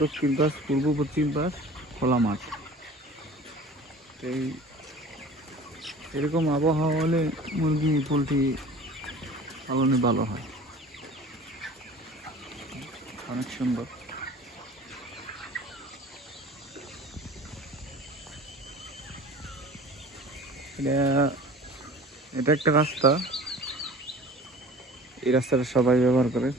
দক্ষিণ পাশ, পূর্ব পশ্চিম পাশ খোলা মাঠ। এই এরকম আবহাওয়া হলে মুরগি পোলট্রি পালনে ভালো হয়, অনেক সুন্দর। এটা এটা একটা রাস্তা, এই রাস্তাটা সবাই ব্যবহার করে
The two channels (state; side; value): normal; both; correlation 0.43